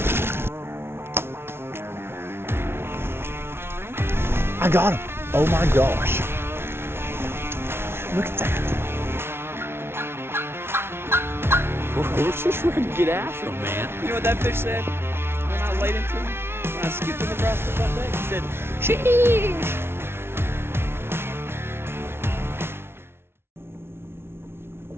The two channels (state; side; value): late; left; 0.12 ms